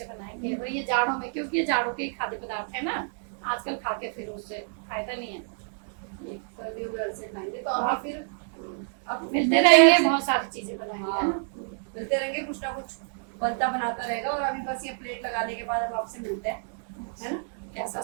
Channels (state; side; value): silent; left; digital silence